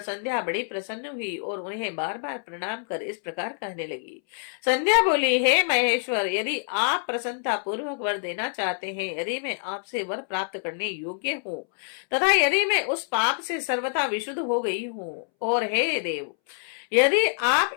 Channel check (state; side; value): silent; right; 61 dB below the other